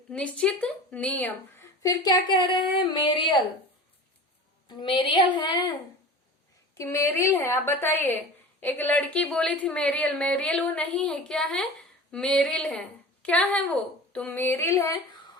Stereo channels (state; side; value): normal; both; correlation 0.36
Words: निश्चित नियम। फिर क्या कह रहे हैं, मेरियल, मेरियल है कि मेरिल है, आप बताइए। एक लड़की बोली थी मेरियल, मेरियल वो नहीं है, क्या है, मेरिल है। क्या है वो, तो मेरिल है।